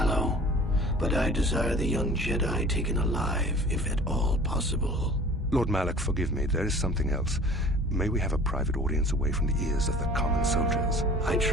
But I desire the young Jedi taken alive, if at all possible. Lord Malik, forgive me. There is something else. May we have a private audience away from the ears of the common soldiers? I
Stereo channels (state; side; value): normal; both; correlation 0.45